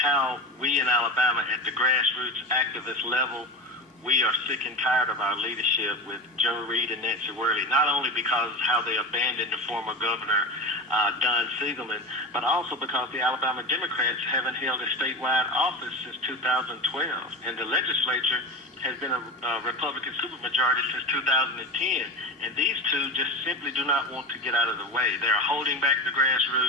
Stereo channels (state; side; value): normal; both; correlation 0.25